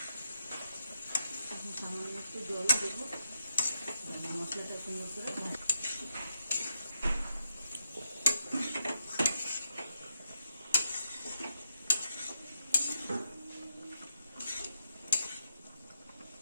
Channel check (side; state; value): both; inverted; correlation -0.82